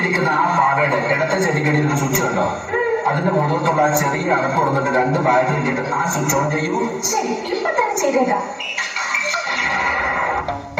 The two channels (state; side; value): identical; both; correlation 1.00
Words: ആ പാവയുടെ ഇടത്തെ ചെടികളിൽ ഒരു സ്വിച്ച് കണ്ടോ? അതിന്റെ മുഖത്തുള്ള ആ ചെറിയ അടപ്പ് തുറന്നിട്ട് 2 ബാറ്ററി ഇട്ടിട്ട് ആ സ്വിച്ച് ഓൺ ചെയ്യൂ. ശരി, ഇപ്പൊ തന്നെ ചെയ്തേക്കാം.